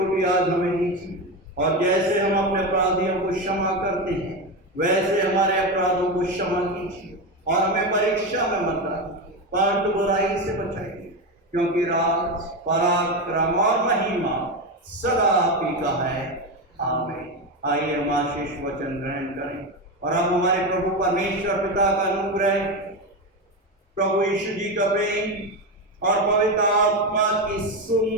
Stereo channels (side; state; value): both; normal; correlation 0.16